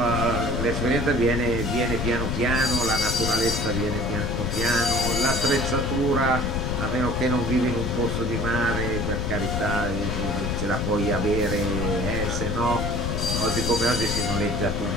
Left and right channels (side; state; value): left; noise; rumble, 1 dB below the sound